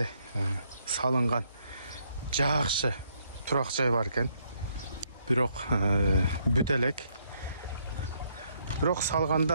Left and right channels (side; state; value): both; inverted; correlation -0.71